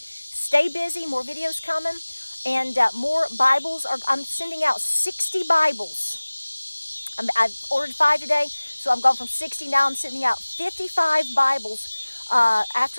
stay busy, more videos coming, and more Bibles. I'm sending out 60 Bibles. I've ordered 5 today, so I'm going from 60. Now I'm sending out 55 Bibles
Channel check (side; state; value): both; inverted; correlation -1.00